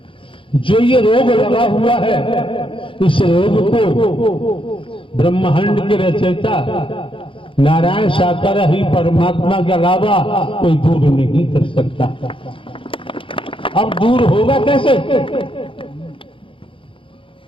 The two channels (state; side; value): late; right; 0.25 ms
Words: जो ये रोग लगा हुआ है, इस रोग को ब्रह्मांड के रचयिता नारायण साकार ही परमात्मा के अलावा कोई दूर नहीं कर सकता। अब दूर होगा कैसे?